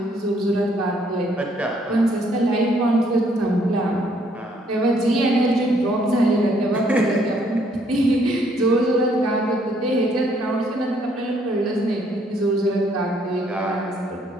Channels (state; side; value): normal; both; correlation 0.67